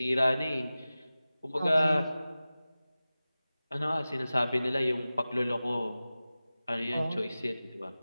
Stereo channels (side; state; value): both; inverted; correlation -0.96